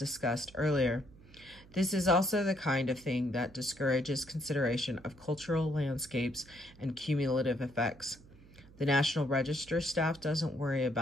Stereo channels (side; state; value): right; noise; hum, 23 dB below the sound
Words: earlier. This is also the kind of thing that discourages consideration of cultural landscapes and cumulative effects. The National Register staff doesn't worry